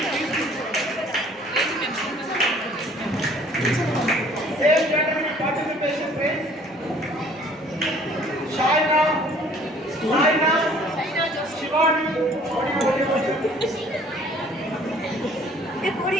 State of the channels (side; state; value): both; normal; correlation 0.55